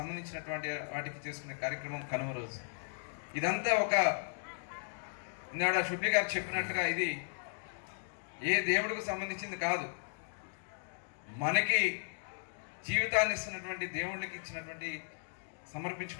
వాటికి చేసుకునే కార్యక్రమం కనుమ రోజు. ఇదంతా ఒక ఇందాడ శుభ్లి గారు చెప్పినట్టుగా ఇది ఏ దేవుడికి సంబంధించింది కాదు, మనకి జీవితాన్ని ఇస్తున్నటువంటి దేవుళ్ళకి ఇచ్చినటువంటి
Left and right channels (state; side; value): silent; right; digital silence